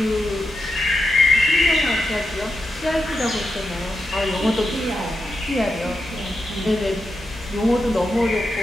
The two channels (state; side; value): normal; both; correlation 0.87